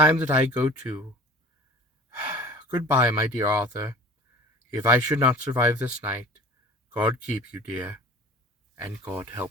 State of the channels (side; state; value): both; normal; correlation 0.43